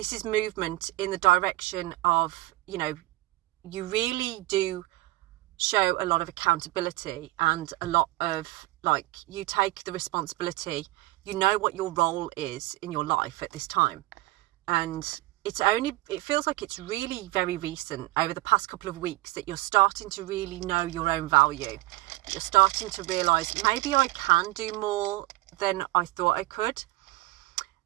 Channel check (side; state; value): left; quieter; 20.5 dB